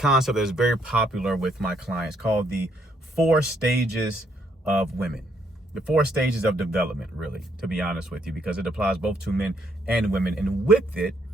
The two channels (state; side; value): normal; both; correlation 0.71